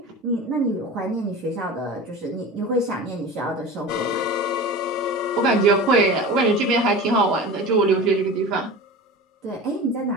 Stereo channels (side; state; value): both; normal; correlation 0.33